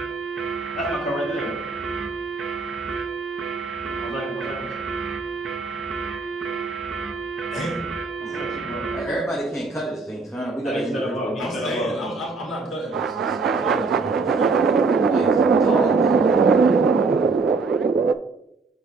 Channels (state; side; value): quieter; left; 4.1 dB